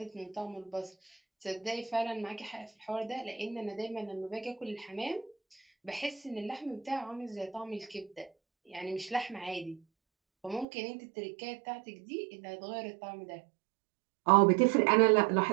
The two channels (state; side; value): drops out; left; at 10.7 s